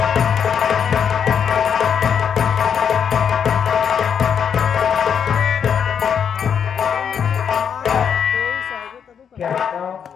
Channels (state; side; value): quieter; right; 7.6 dB